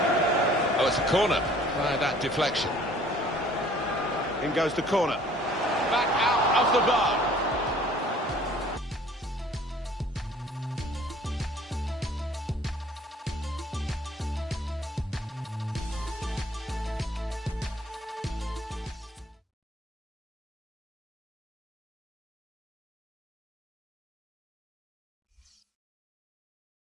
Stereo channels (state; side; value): normal; both; correlation 0.54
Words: Oh, it's a corner by that deflection. In goes the corner. Back out of the bar.